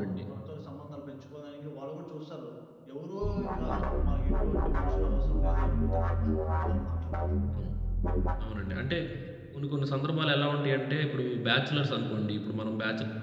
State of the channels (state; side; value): identical; both; correlation 1.00